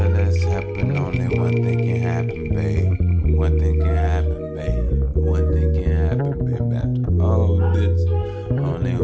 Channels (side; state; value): both; identical; correlation 1.00